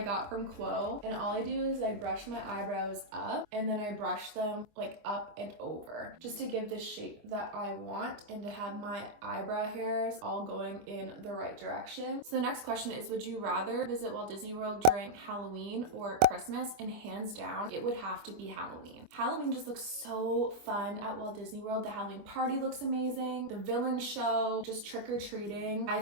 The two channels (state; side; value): late; left; 25 ms